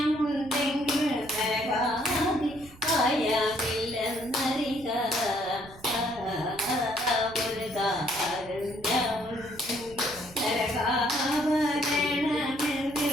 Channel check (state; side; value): noise; right; rumble, 21 dB below the sound